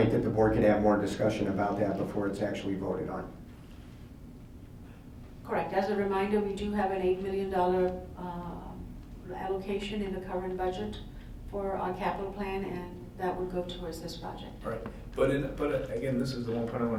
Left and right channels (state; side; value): identical; both; correlation 1.00